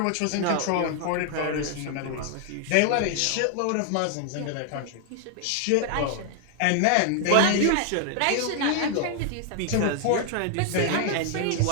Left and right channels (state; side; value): different; both; correlation 0.00